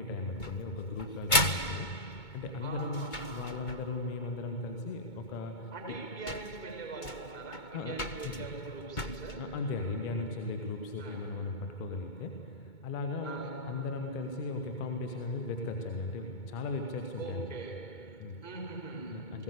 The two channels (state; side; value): late; right; 2.2 ms